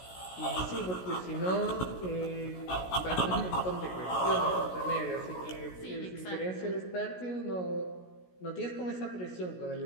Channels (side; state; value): right; late; 16 ms